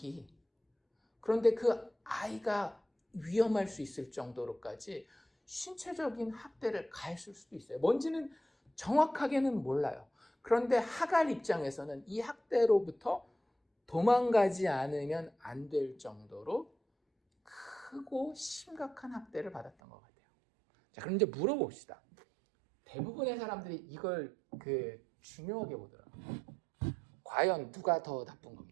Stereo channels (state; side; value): drops out; left; at 19.7 s